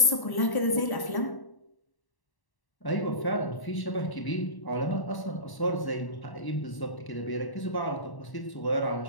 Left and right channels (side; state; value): right; late; 1.1 ms